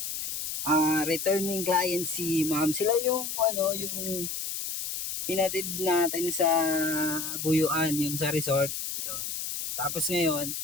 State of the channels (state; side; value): noise; left; hiss, 4 dB below the sound